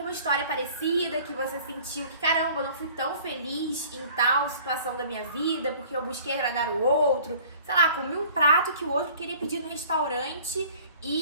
história parecida, que você sentiu que, caramba, eu não fui tão feliz em tal situação da minha vida, porque eu busquei agradar o outro, sei lá, comi um prato que o outro queria pedir no restaurante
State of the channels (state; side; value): inverted; both; correlation -0.50